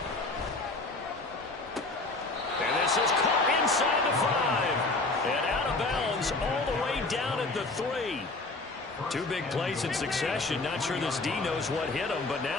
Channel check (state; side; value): quieter; right; 3.3 dB